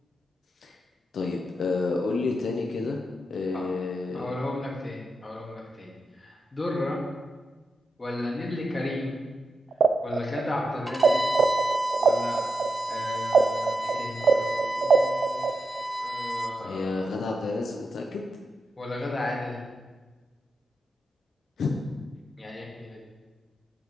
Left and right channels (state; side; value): normal; both; correlation 0.87